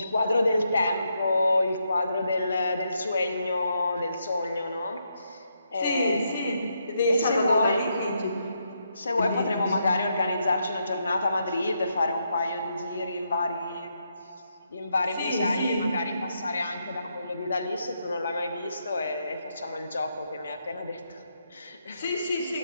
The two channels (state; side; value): inverted; both; correlation -0.80